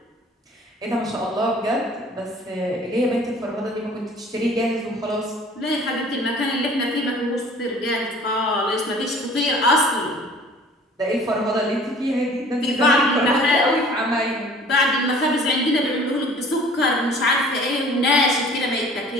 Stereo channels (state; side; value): normal; both; correlation 0.49